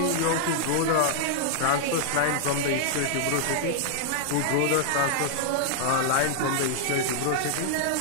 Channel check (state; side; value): different; both; correlation 0.00